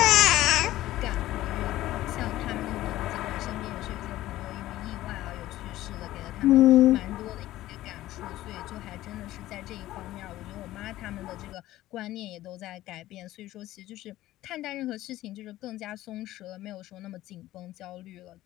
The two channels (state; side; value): quieter; right; 15.4 dB